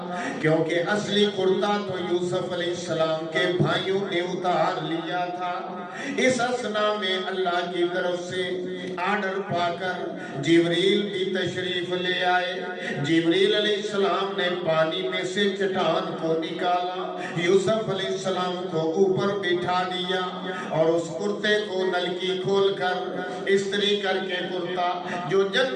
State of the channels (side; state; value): both; identical; correlation 1.00